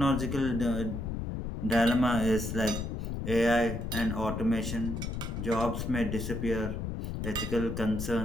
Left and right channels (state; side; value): noise; left; rumble, 4 dB below the sound